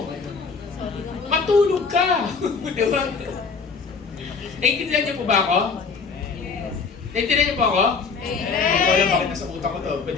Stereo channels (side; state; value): right; quieter; 5.1 dB